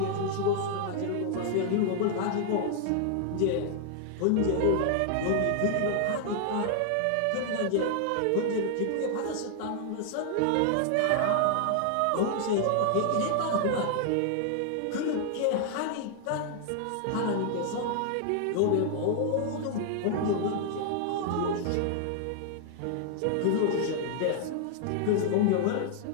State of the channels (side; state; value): both; different; correlation 0.00